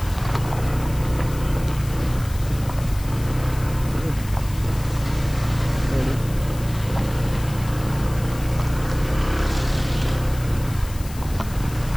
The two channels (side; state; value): left; noise; hiss, 17 dB below the sound